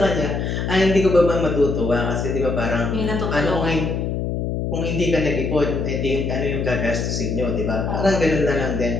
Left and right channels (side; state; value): left; noise; hum, 1 dB below the sound